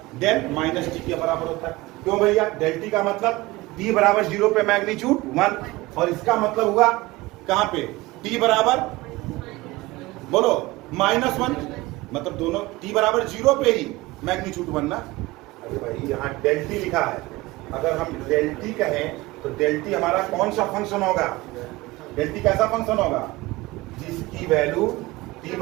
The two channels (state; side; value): quieter; left; 20.3 dB